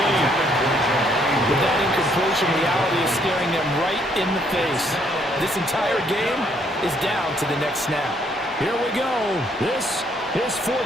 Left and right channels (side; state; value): both; normal; correlation 0.68